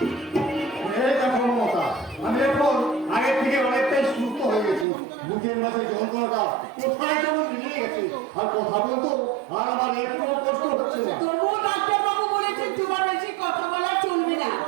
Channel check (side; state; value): left; drops out; at 4.9 s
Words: এই দেখো মমতা, আমি এখন আগের থেকে অনেকটাই সুস্থ হয়ে গেছি। বুকের মাঝে যন্ত্রণাটা কোথায় যেমন মিলিয়ে গেছে, আর কথা বলতো আর আমার একটু কষ্ট হচ্ছে না। তবুও ডাক্তারবাবু বলেছেন তোমার বেশি কথা বলা চলবে না।